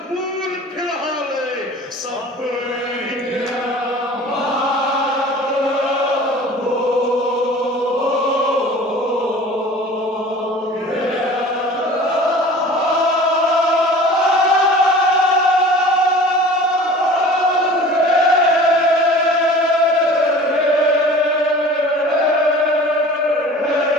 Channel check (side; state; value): both; normal; correlation 0.42